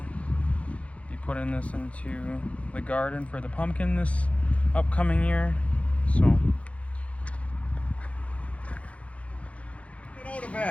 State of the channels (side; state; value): right; late; 0.064 ms